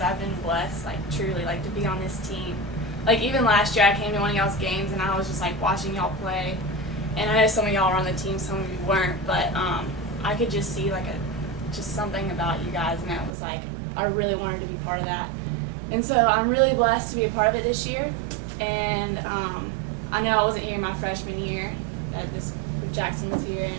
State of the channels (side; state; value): left; drops out; at 13.3 s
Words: I've been blessed, truly, to be on this team. Even last year I came to one of y'all's games and I was just watching y'all play. And I know some of y'all were on the team, some of you weren't, but I could just see just something about you guys, and it was I really wanted to be part of that. And so I'm really blessed to be a part of it this year. And I know I wasn't here my freshman year, Jackson was here and